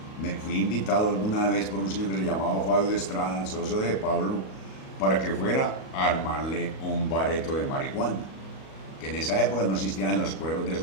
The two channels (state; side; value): late; right; 37 ms